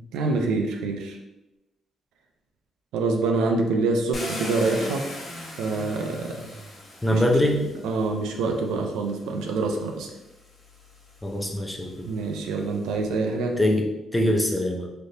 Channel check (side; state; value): both; normal; correlation 0.69